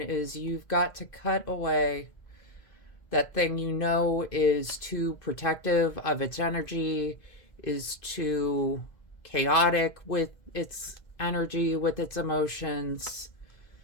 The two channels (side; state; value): right; late; 2.0 ms